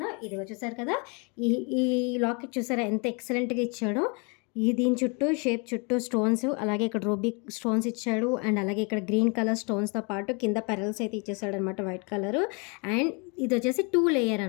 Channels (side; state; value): right; quieter; 33.1 dB